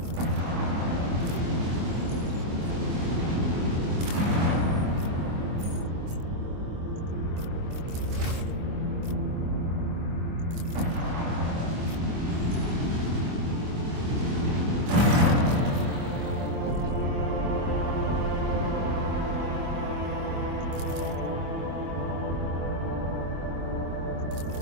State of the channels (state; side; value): late; left; 24 ms